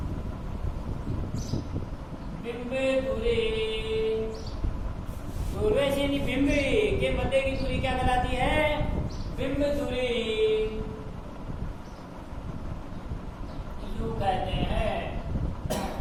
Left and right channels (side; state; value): both; identical; correlation 1.00